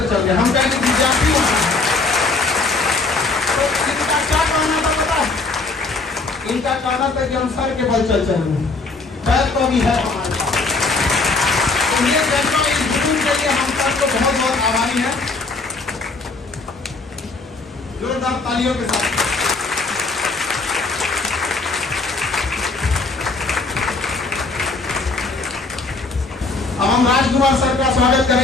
चल गए। हम कहेंगे विद्यार्थी होना है तो इनका क्या कहना था पता है? इनका कहना था कि हम सर के बल चल चलेंगे, पैर तो अभी है हमारे पास। तो ये जज्बा, इस जुनून के लिए हम सबको बहुत बहुत आभारी हैं। जोरदार तालियों के साथ अब हम राजकुमार सर का स्वागत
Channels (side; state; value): right; quieter; 3.7 dB